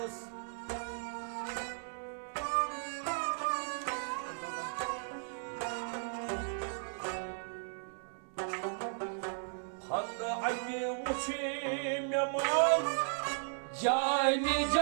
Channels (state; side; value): silent; left; digital silence